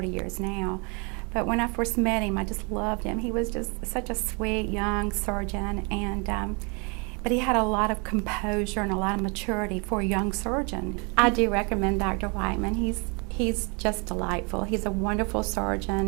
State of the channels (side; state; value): left; quieter; 33.0 dB